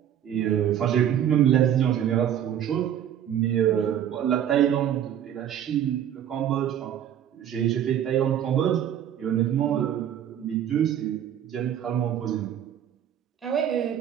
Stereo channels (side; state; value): left; quieter; 10.1 dB